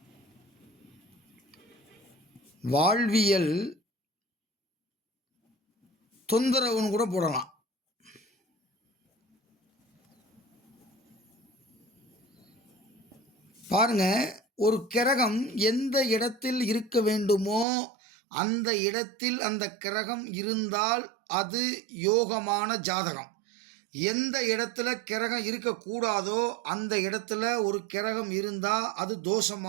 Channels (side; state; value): left; drops out; at 17.7 s